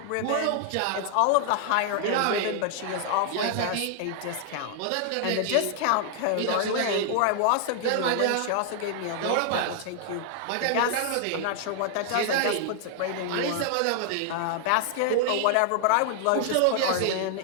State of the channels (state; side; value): different; both; correlation 0.00